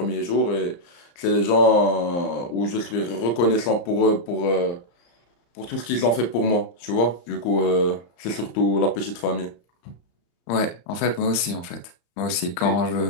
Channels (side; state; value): right; late; 34 ms